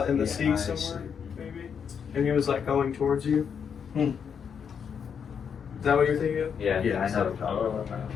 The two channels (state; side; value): quieter; right; 7.1 dB